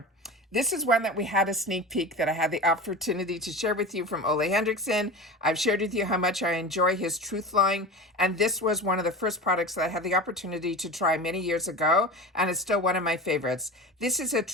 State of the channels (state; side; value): normal; both; correlation 0.31